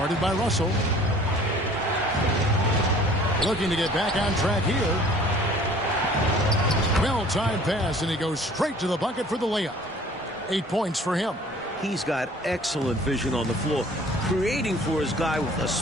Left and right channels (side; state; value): both; normal; correlation 0.51